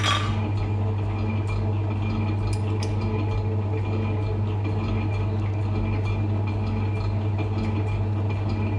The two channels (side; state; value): both; identical; correlation 1.00